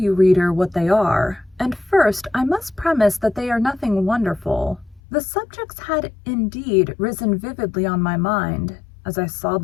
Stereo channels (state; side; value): drops out; right; at 5.0 s